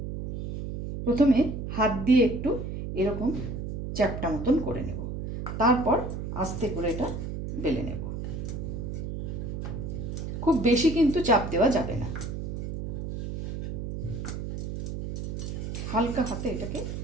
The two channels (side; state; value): right; noise; hum, 5 dB below the sound